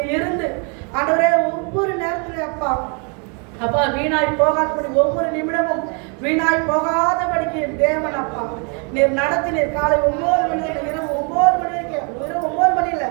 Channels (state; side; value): quieter; left; 36.4 dB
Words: இருந்து ஆண்டவரே ஒவ்வொரு நேரத்துலையும் அப்பா வீணாய் போகாதபடி ஒவ்வொரு நிமிடமும் வீணாய் போகாதபடிக்கு தேவன் அப்பா நீர் நடத்தினீர். காலை 9 மணி இரவு 9 மணி வரைக்கும், இரவு 9 மணி இல்லை